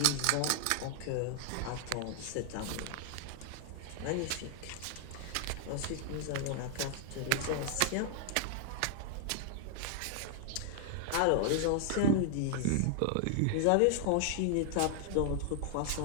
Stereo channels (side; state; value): both; different; correlation 0.00